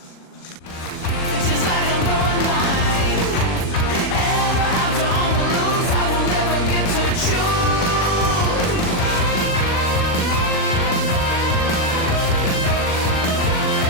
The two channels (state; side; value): late; right; 40 ms